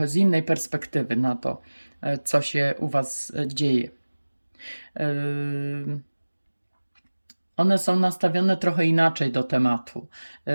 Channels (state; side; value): inverted; both; correlation -1.00